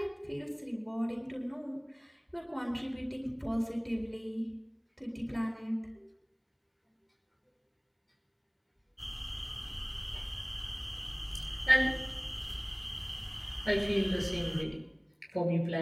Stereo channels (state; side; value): identical; both; correlation 1.00